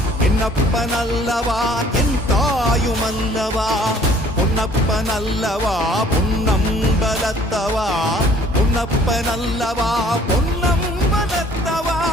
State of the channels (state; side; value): normal; both; correlation 0.56